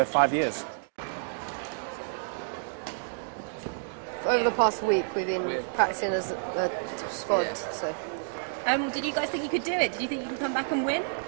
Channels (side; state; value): left; silent; digital silence